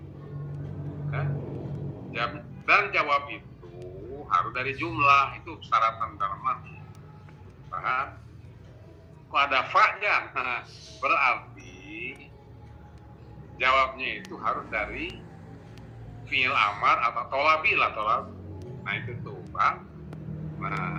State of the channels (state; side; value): identical; both; correlation 1.00